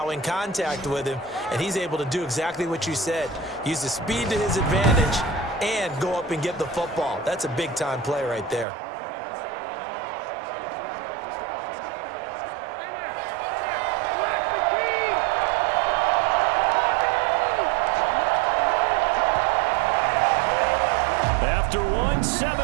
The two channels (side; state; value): left; drops out; at 8.7 s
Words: in contact with him, and he's able to do exactly what you said. Use the speed to his advantage and go up and get the football. That's a big-time play right there. After